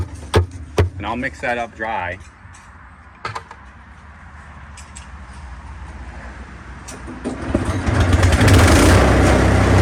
And I'll mix that up dry.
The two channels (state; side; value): identical; both; correlation 1.00